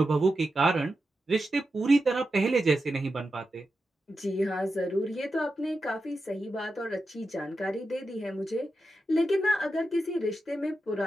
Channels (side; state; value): both; normal; correlation 0.89